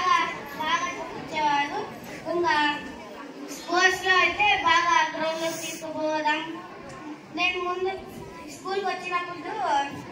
చూపించేవాడు. ఇంకా స్పోర్ట్స్ లో అయితే బాగా గ్రౌండ్ లో తీసుకుపోవడం. నేను ముందు స్కూల్కి వచ్చినప్పుడు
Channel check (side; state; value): both; identical; correlation 1.00